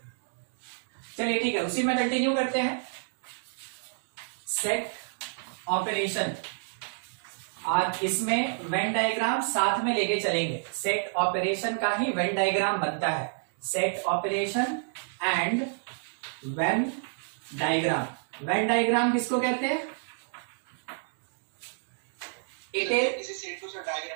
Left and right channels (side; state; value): left; silent; digital silence